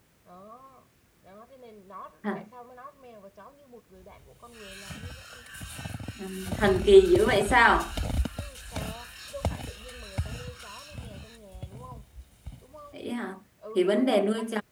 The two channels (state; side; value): identical; both; correlation 1.00